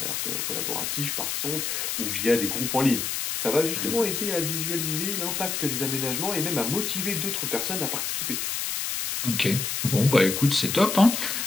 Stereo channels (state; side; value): noise; left; hiss, 2 dB below the sound